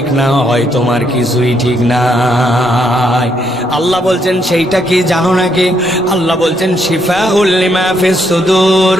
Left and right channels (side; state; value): both; normal; correlation 0.74